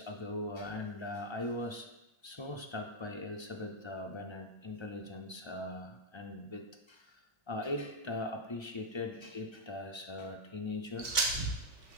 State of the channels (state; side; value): late; right; 1.2 ms